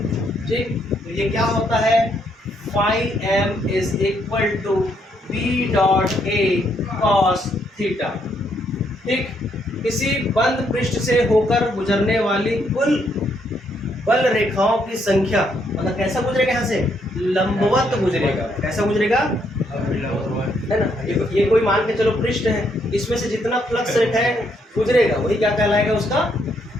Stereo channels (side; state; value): both; normal; correlation 0.73